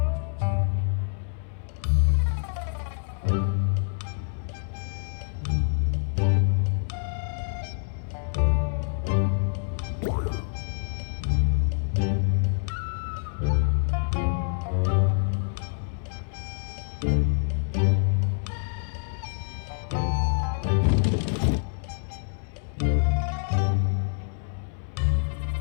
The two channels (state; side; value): silent; right; 60 dB below the other